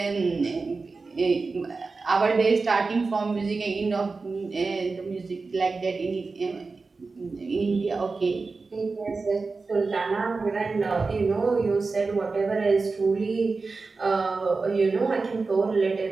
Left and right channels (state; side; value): quieter; left; 4.1 dB